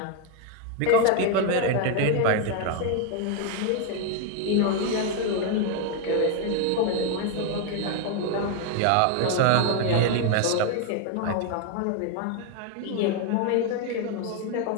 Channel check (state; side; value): different; both; correlation 0.01